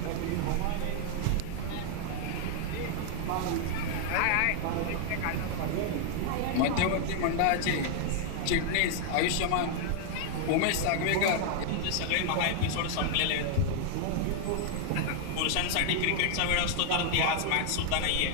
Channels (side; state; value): both; different; correlation 0.00